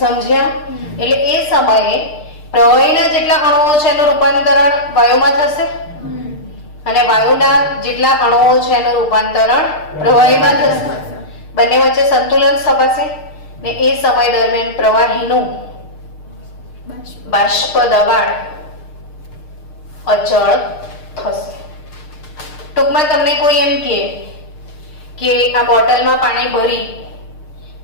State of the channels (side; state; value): right; late; 6.6 ms